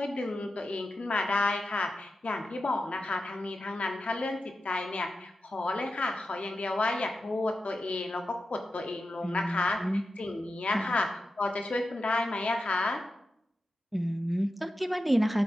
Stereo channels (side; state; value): both; normal; correlation 0.91